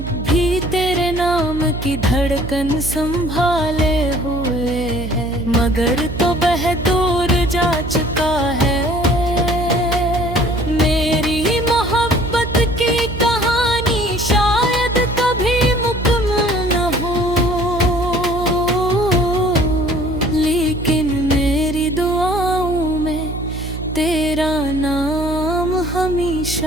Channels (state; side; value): noise; right; hum, 7 dB below the sound